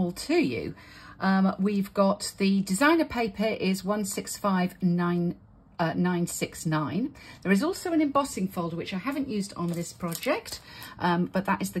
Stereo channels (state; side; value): identical; both; correlation 1.00